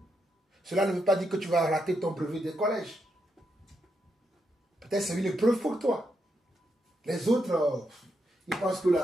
Cela ne veut pas dire que tu vas rater ton brevet de collège. Peut-être c'est une épreuve pour toi. Les autres, ils pensent que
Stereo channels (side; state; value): both; normal; correlation 0.82